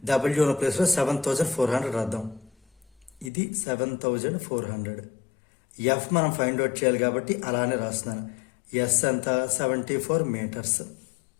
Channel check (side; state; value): right; drops out; at 3.3 s